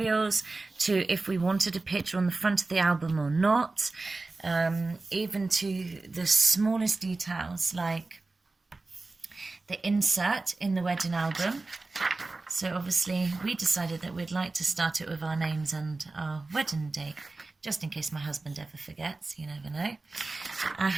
to if we wanted a picture on the front of the album or not, even to the smallest details like the insert in the wedding album. So obviously we decided that we'd like to start it with our names and our wedding date, just in case my husband ever forgets, you never know.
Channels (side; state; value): left; quieter; 3.4 dB